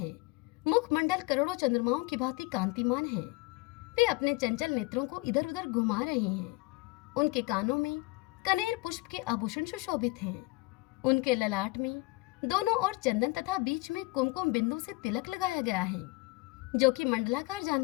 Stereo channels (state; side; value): quieter; right; 23.3 dB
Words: मुखमंडल करोड़ों चंद्रमाओं की भांति कांतिमान है। वे अपने चंचल नेत्रों को इधर उधर घुमा रहे हैं। उनके कानों में कनेर पुष्प के आभूषण सुशोभित हैं। उनके ललाट में दोनों ओर चंदन तथा बीच में कुमकुम बिंदु से तिलक लगाया गया है, जो कि मंडलाकार जान